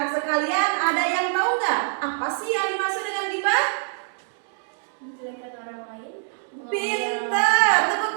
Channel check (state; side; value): silent; left; digital silence